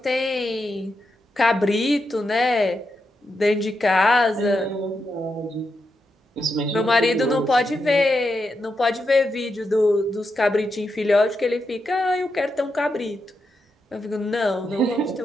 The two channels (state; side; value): normal; both; correlation 0.85